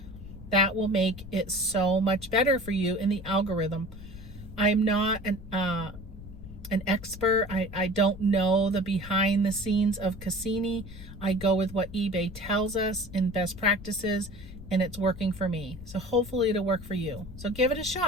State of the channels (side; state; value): left; noise; rumble, 14 dB below the sound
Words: that will make it so much better for you in the algorithm. I'm not an expert. I don't know the behind the scenes of Cassini. I go with what eBay tells us in best practices, and it's working for me. So hopefully it'll work for you. So give it a